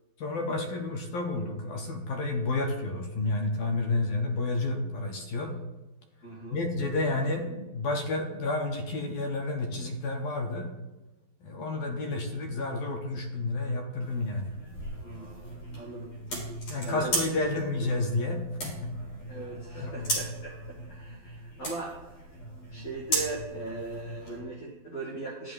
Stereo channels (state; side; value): late; right; 12 ms